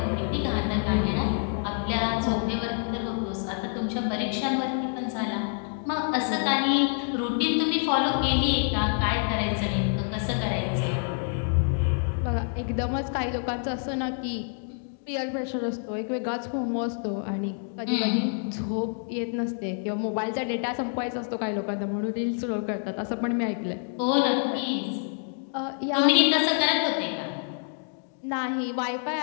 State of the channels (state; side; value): silent; right; 60 dB below the other